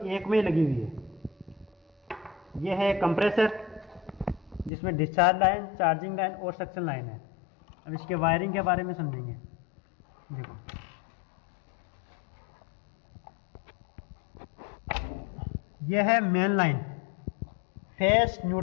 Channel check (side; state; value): right; drops out; at 4.7 s